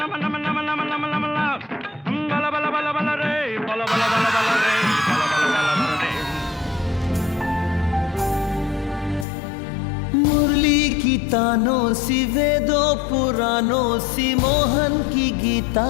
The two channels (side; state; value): right; drops out; at 9.2 s